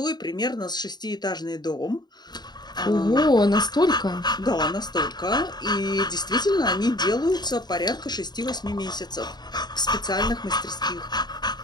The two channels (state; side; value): late; right; 0.20 ms